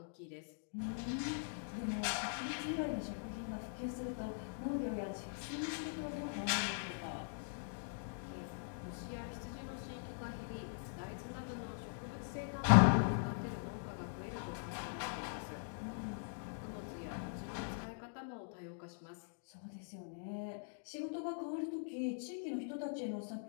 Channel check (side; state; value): right; silent; digital silence